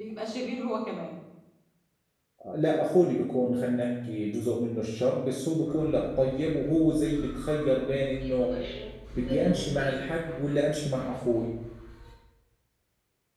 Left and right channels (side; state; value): both; identical; correlation 1.00